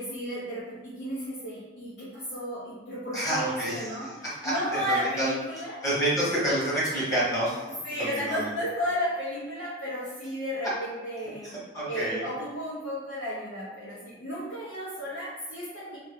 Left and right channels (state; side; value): normal; both; correlation 0.15